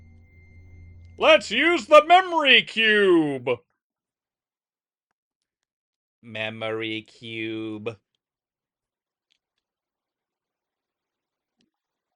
Let's use the memory cube. Memory cube.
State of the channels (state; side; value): identical; both; correlation 1.00